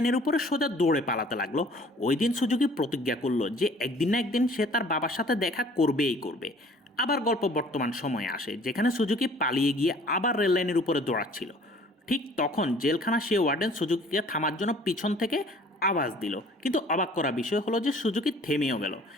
উপরে সোজা দৌড়ে পালাতে লাগলো। ওই দিন সুজুকি প্রতিজ্ঞা করলো যে একদিন না একদিন সে তার বাবার সাথে দেখা করবেই করবে। আবার গল্প বর্তমান সময়ে আসে, যেখানে সুজুকি পালিয়ে গিয়ে আবার রেললাইনের উপরে দৌড়াচ্ছিল। ঠিক তখন জেলখানা সে ওয়ার্ডেন সুজুকিকে থামার জন্য পিছন থেকে আওয়াজ দিল, কিন্তু অবাক করা বিষয় হলো যে সুজুকি থেমেও গেল।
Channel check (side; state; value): both; normal; correlation 0.53